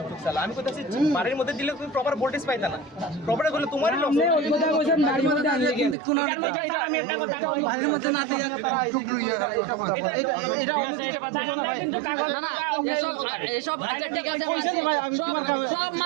চালা। আমি কইতাছি বাড়ির মধ্যে দিলে তুমি প্রপার ভোল্টেজ পাইতা না, প্রপার করলে তোমারই লস। আপনি ওই কথা কইছেন বাড়ির মধ্যে আনলে কিন্তু কোন এটার মধ্যে আমি একটা কথা বলি, বাড়ির মধ্যে না দিয়ে তারা আইছে কিন্তু এটা কথা বলে এটা কিন্তু কাগজ না না এসব আচ্ছা ঠিক আছে কইছেন ভাই, আমি তোমার সব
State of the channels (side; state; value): left; drops out; at 6.0 s